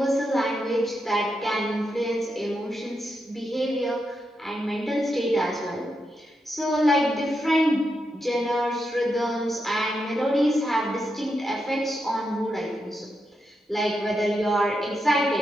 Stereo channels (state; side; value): normal; both; correlation 0.85